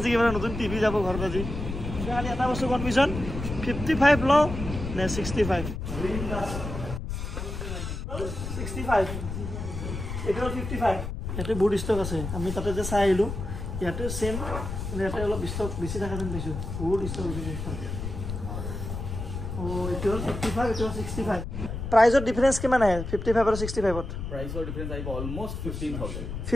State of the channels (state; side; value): noise; left; rumble, 6 dB below the sound